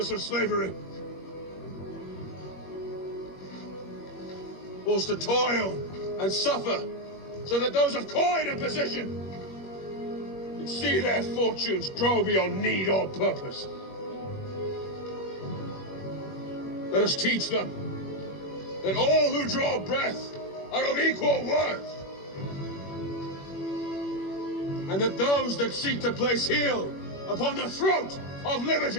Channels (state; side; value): late; right; 21 ms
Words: of slavery. Forced to toil and suffer, so that those of coin and position and see their fortunes grow beyond need or purpose. Let us teach them that all who draw breath are of equal worth, and that those that seek to place heel upon the throat of